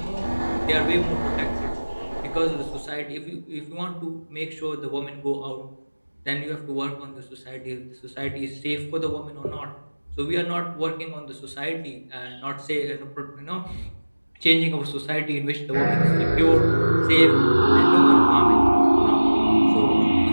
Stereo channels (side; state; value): both; inverted; correlation -1.00